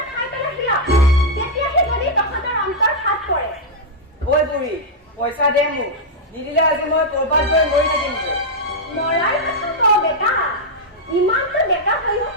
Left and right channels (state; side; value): normal; both; correlation -0.04